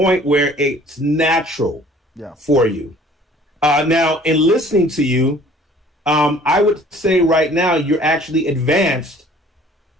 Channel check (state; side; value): normal; both; correlation 0.52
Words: where it's natural Yeah. for you. Now, in listening to you, I would say right now you're actually advanced